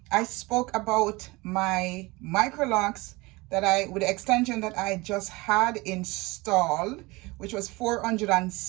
I spoke about my micro locks with the extension that I just had installed, which was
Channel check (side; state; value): left; quieter; 23.2 dB